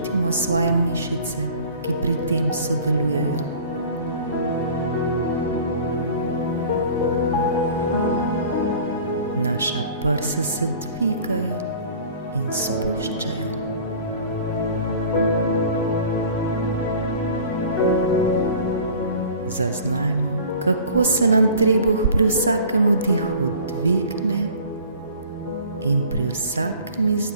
svoje mišice, ki pri tem sodelujejo. Naša prsa se dvigajo in spuščajo. Zaznajmo, kako se nam trebuh pri vsakem vdihu dvigne in pri vsakem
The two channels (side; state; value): both; inverted; correlation -0.45